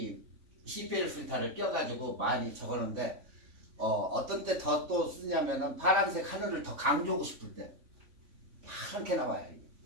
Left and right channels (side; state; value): left; late; 3.5 ms